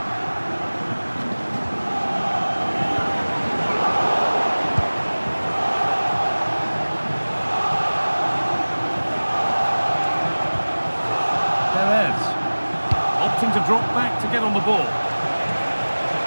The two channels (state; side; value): inverted; both; correlation -1.00